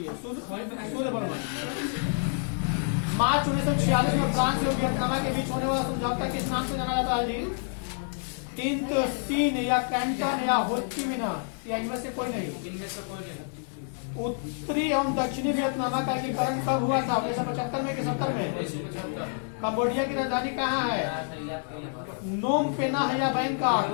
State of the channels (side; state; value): right; silent; 59 dB below the other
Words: सूर्य भगवान। 5/1946 में फ्रांस और वियतनाम के बीच होने वाला समझौता किस नाम से जाना जाता है जी? तिंत सीन या कैंटन या होचिमिना, या इनमें से कोई नहीं। उत्तरी एवं दक्षिणी वियतनाम का एकीकरण कब हुआ था? 1975 में कि 70 में? कंबोडिया की राजधानी कहाँ है? नोम पेना है या बैंकॉक?